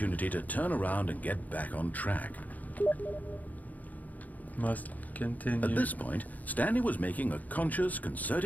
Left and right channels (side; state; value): right; late; 0.079 ms